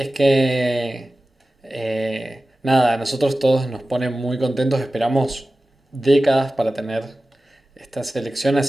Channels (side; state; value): both; normal; correlation 0.96